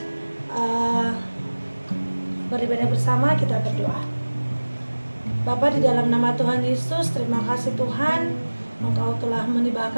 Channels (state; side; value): inverted; both; correlation -1.00